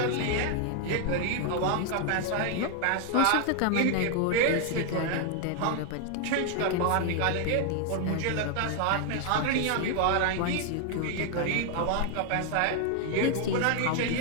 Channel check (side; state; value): both; different; correlation 0.00